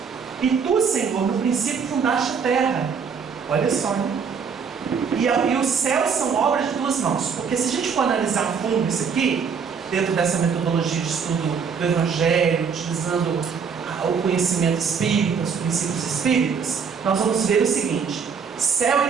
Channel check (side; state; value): left; quieter; 6.2 dB